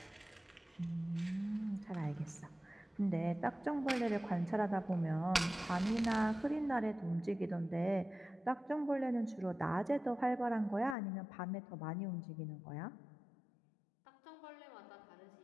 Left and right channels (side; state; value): right; drops out; at 11.0 s